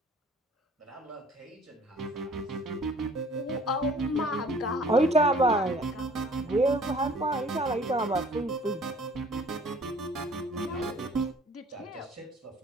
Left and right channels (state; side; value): normal; both; correlation 0.53